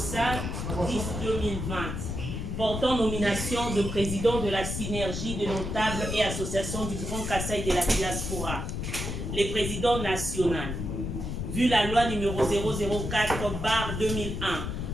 10 2020. Portant nomination de président de la synergie des notables et associations du Grand Kassai de la diaspora. Les présidents nationaux. Vu la loi numéro 004/2001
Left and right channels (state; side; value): noise; left; rumble, 4 dB below the sound